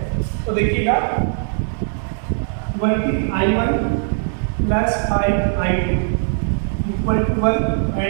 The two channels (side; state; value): left; silent; digital silence